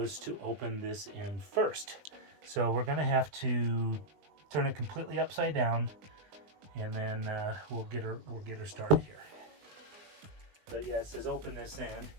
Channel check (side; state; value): left; late; 20 ms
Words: to open this in first. So we're going to have to turn it completely upside down, and then we'll get her started here. But yeah, it says open this in.